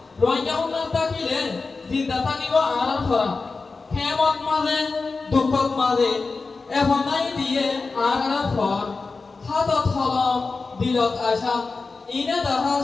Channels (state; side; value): quieter; right; 4.1 dB